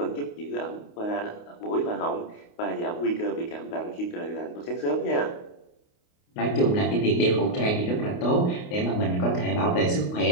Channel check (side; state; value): right; late; 28 ms